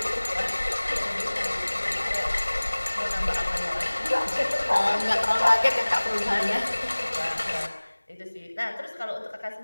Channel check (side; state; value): both; inverted; correlation -1.00